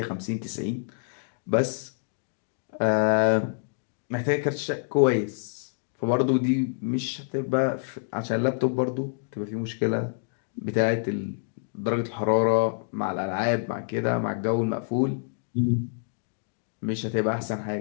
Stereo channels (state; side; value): silent; right; digital silence